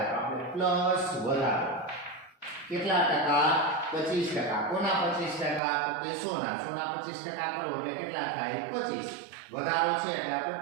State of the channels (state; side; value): drops out; left; at 5.6 s